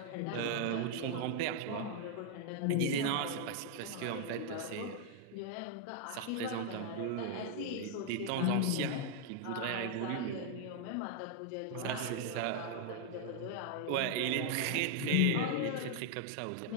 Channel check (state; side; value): different; both; correlation 0.00